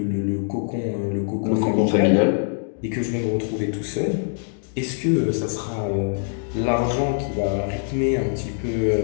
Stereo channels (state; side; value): silent; right; digital silence